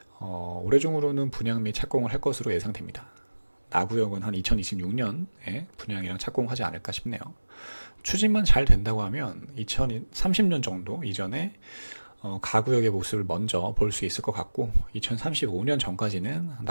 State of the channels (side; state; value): both; inverted; correlation -1.00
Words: 올해 중으로는 분양 및 착공을 할 것으로 예상됩니다. 나구역은 한 2026년에 분양이랑 착공하지 않을까 싶네요. 추진만 잘 된다고 하면 2030년 정도 이전에 가구역의 모습을 먼저 볼 수 있을 것 같고 2035년 전까지는